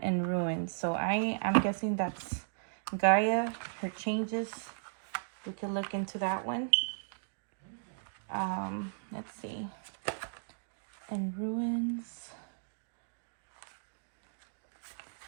in ruins. So I'm guessing that's Gaia, her changes. We could look into that one. Let's see. In ruins.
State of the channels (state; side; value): silent; left; digital silence